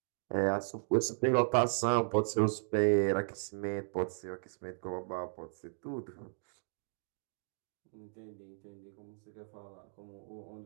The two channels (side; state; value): left; silent; digital silence